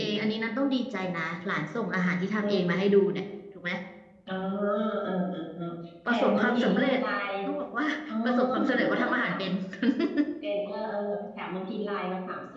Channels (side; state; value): both; identical; correlation 1.00